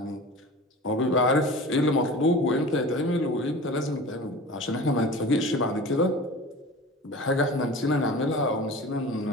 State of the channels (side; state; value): both; normal; correlation 0.36